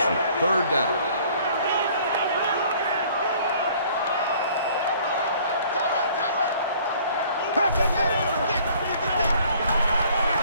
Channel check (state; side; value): inverted; both; correlation -0.56